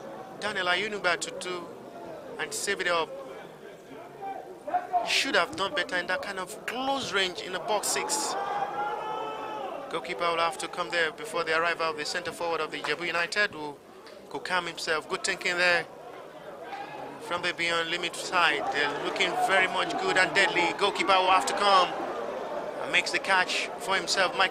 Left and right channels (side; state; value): both; identical; correlation 1.00